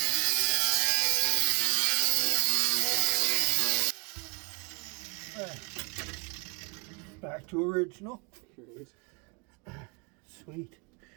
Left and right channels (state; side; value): quieter; left; 32.5 dB